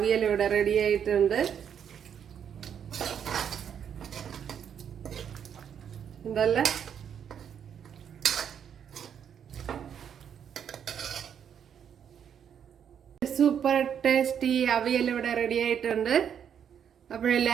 ഇവിടെ റെഡി ആയിട്ടുണ്ട്. എന്തല്ല സൂപ്പർ ടേസ്റ്റി അവിയൽ ഇവിടെ റെഡി ആയിട്ടുണ്ട്.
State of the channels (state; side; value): quieter; left; 8.4 dB